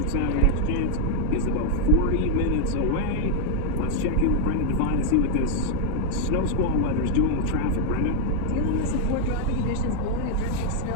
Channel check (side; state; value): both; different; correlation 0.00